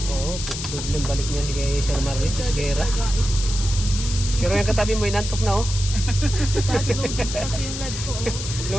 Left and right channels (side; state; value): left; noise; hiss, 7 dB below the sound